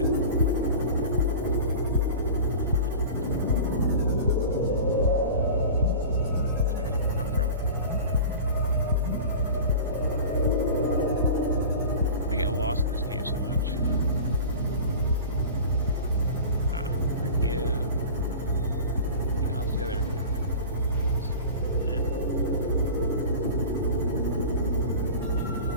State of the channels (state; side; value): inverted; both; correlation -0.34